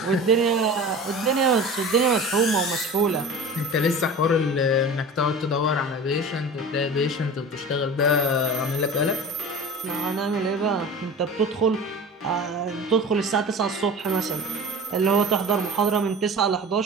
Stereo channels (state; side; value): normal; both; correlation 0.35